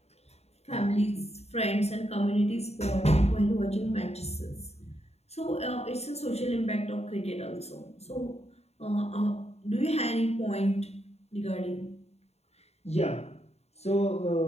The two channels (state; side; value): late; right; 0.31 ms